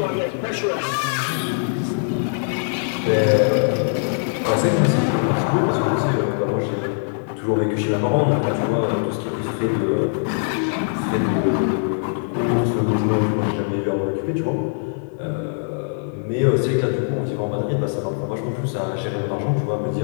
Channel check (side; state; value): right; silent; 61 dB below the other